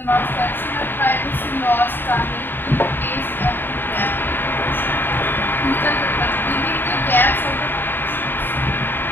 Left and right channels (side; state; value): right; late; 0.096 ms